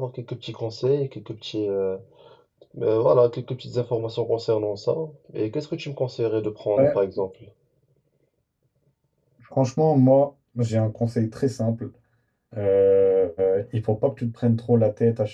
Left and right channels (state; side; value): identical; both; correlation 1.00